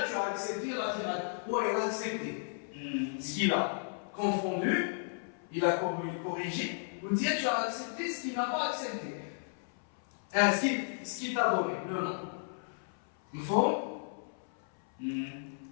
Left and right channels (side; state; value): right; silent; 55 dB below the other